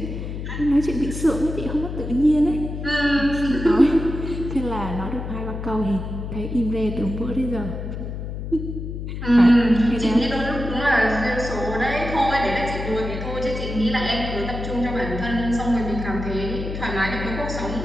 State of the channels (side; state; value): left; noise; hum, 6 dB below the sound